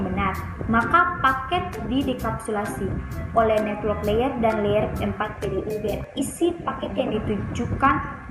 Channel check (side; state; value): both; identical; correlation 1.00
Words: benar. Maka paket didekapsulasi oleh network layer dan layer 4 PDU berisi paket yang ditujukan